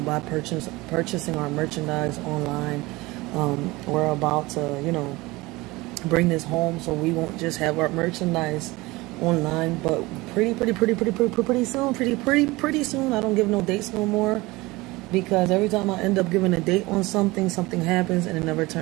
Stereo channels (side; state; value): left; quieter; 21.4 dB